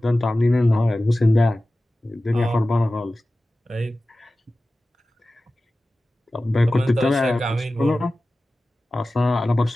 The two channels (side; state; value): both; normal; correlation 0.96